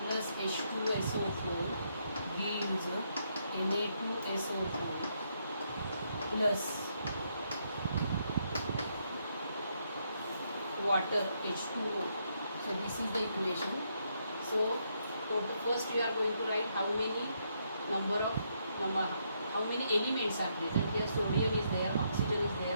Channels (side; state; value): both; inverted; correlation -0.76